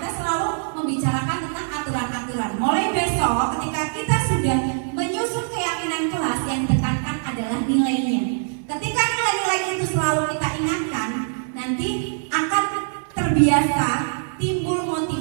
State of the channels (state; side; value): silent; left; 57 dB below the other